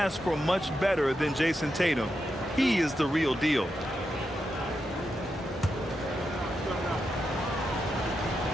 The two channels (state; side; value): normal; both; correlation 0.86